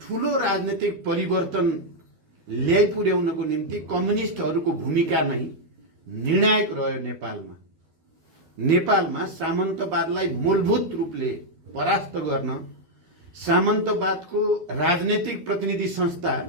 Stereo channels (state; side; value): late; left; 12 ms